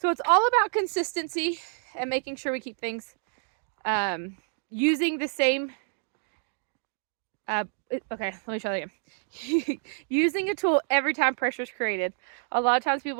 it's all about consistency and making sure we keep things using the same, okay, let me try that again. Using a tool every time pressure is created. A lot of times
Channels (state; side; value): silent; left; 59 dB below the other